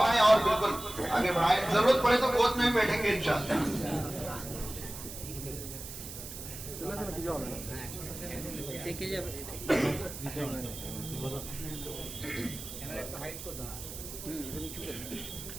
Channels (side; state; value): right; noise; hiss, 10 dB below the sound